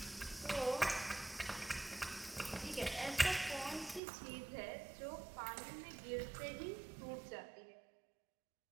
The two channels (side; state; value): left; drops out; at 4.0 s